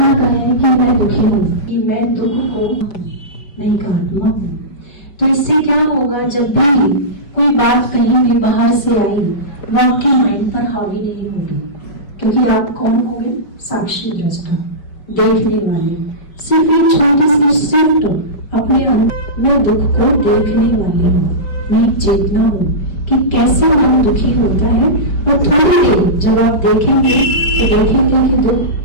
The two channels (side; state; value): right; late; 5.1 ms